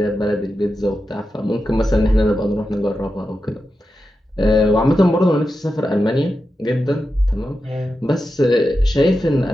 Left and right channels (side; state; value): both; normal; correlation 0.90